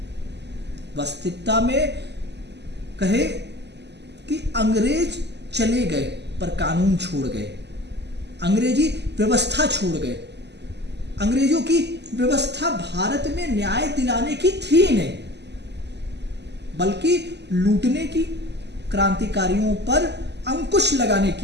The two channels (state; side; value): late; left; 0.50 ms